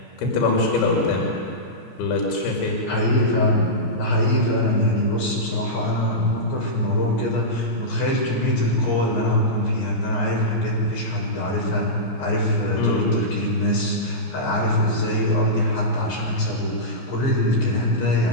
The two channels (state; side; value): late; right; 14 ms